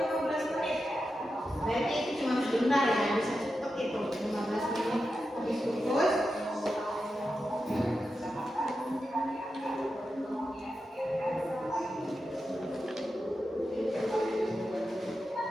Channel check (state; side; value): normal; both; correlation 0.89